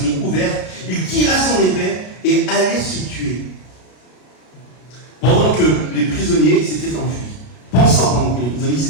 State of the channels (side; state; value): right; late; 33 ms